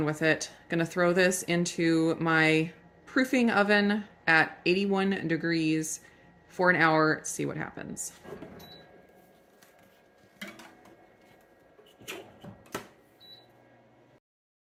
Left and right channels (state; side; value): identical; both; correlation 1.00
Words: with it. Going to throw this into my proofing oven at 81 degrees for an hour, see what happens.